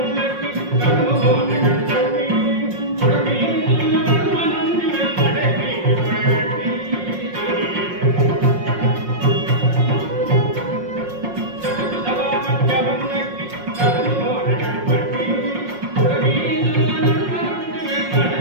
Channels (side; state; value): left; late; 5.6 ms